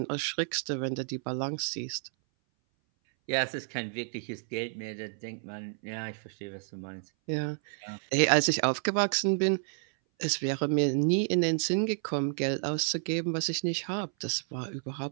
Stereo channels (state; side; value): silent; left; 57 dB below the other